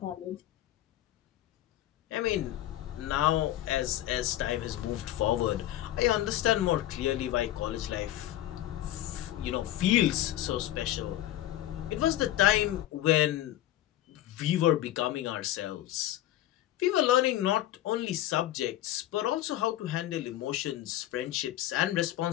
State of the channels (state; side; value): quieter; right; 13.8 dB